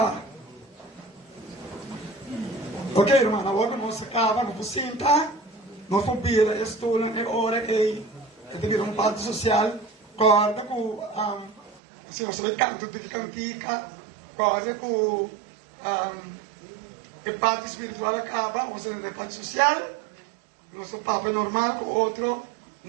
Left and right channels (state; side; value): drops out; left; at 11.8 s